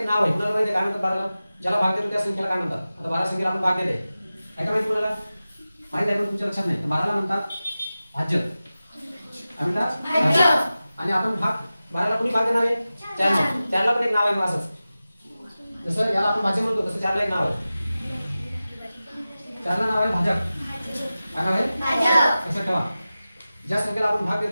नाव आहे, कुणाला माहिती आहे काय म्हणतात 12 ला? ज्याला भाग देतो त्या संख्येला काय म्हणतात? आता 12 संख्येला आपण भाग देले आहे का माहिती कुणाला? माहिती आहे पण तुमच्या लक्षात नाही. तर 12 ला म्हणतात भाज्य. काय म्हणतात? भाज्य. आणि आपण भाग 12 ला कोणी भाग देणार आहे? 4 ला. 4 ला पण एक नाव आहे मग असंच. जसं याला आपण भाज्य म्हणतो तसं 4 ला एक नाव आहे. 4 ला नाव आहे भाजक. काय नाव आहे? भाजक. लक्षात ठेवा. ज्या संख्येला आपण भाग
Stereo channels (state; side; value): inverted; both; correlation -0.95